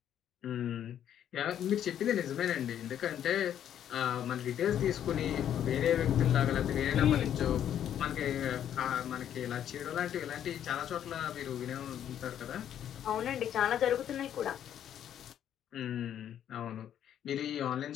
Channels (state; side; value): quieter; right; 10.1 dB